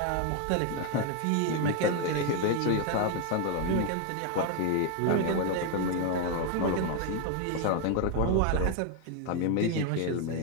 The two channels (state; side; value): different; both; correlation 0.01